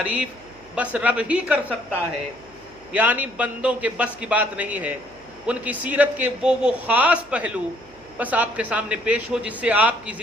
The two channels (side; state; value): right; noise; hum, 28 dB below the sound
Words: بس رب ہی کر سکتا ہے، یعنی بندوں کے بس کی بات نہیں ہے. ان کی سیرت کے وہ خاص پہلو بس آپ کے سامنے پیش ہو جس سے آپ کی